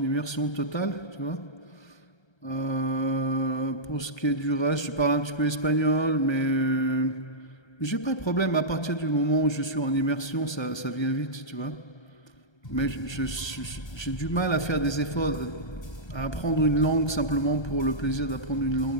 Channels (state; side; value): late; right; 1.3 ms